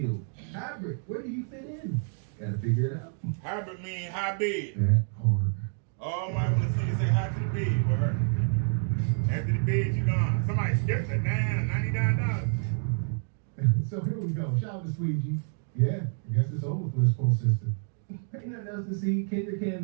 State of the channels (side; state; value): left; silent; 59 dB below the other